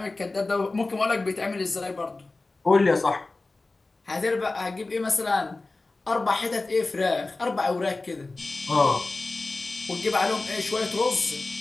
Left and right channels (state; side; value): quieter; right; 3.3 dB